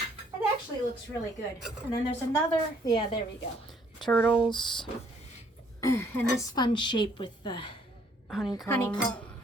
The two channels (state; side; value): normal; both; correlation 0.65